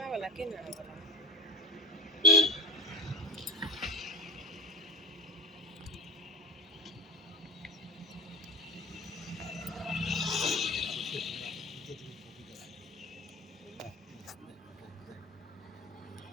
have a lucky now.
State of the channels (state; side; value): normal; both; correlation 0.35